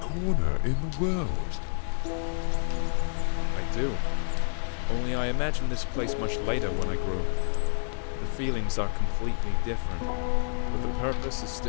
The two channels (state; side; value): silent; right; digital silence